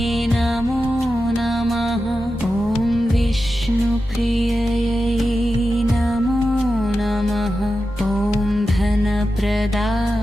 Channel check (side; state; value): both; normal; correlation 0.92